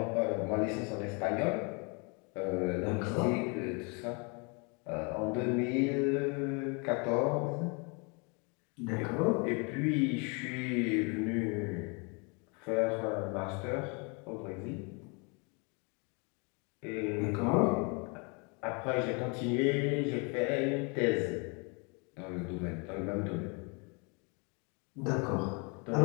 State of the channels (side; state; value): right; quieter; 32.9 dB